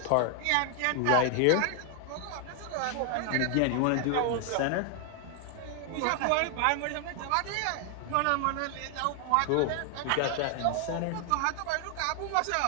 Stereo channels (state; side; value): different; both; correlation 0.00